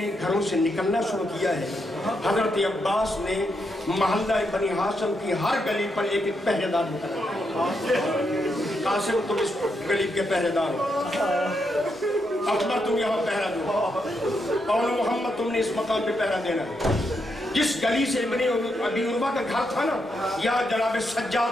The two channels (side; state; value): both; normal; correlation 0.81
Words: घरों से निकलना शुरू किया है, हजरत अब्बास ने मोहल्ला बनी हाशिम की हर गली पर एक एक पहरेदार मुकर्रर। कासिम तुम इस गली के पहरेदार हो, अकबर तुम यहाँ पहरा दो, और मोहम्मद तुमने इस मकाम पे पहरा देना। जिस गली से इब्ने अबी उर्वा का घर था ना, यहाँ जनाब